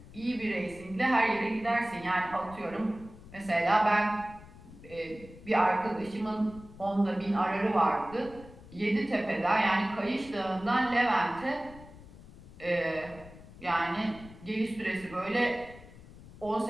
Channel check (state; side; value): noise; left; rumble, 19 dB below the sound